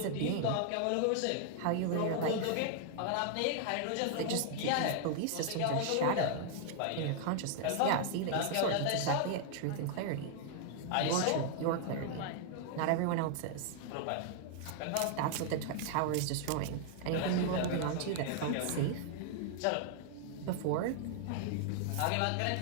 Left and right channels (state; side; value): different; both; correlation 0.00